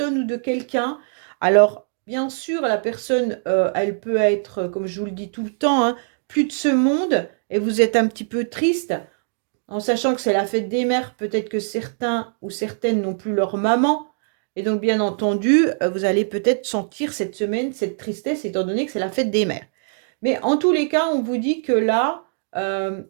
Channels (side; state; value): left; silent; digital silence